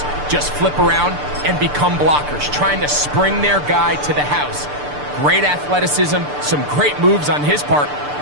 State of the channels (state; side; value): late; left; 6.8 ms